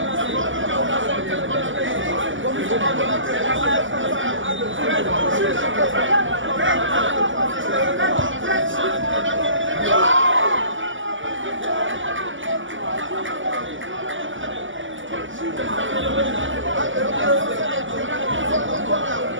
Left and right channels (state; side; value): late; left; 0.56 ms